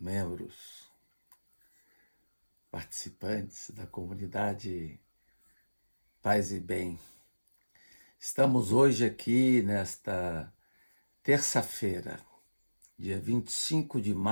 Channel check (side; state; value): both; inverted; correlation -1.00